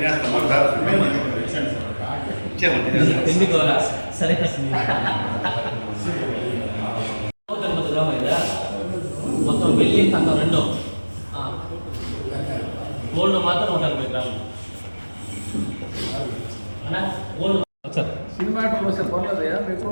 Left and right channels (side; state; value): both; inverted; correlation -1.00